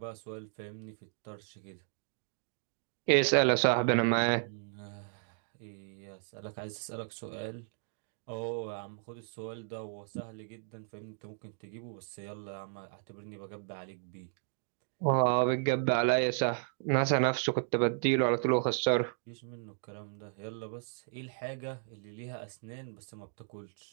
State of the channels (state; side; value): silent; left; digital silence